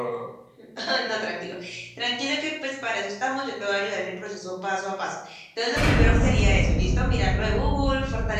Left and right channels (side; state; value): both; identical; correlation 1.00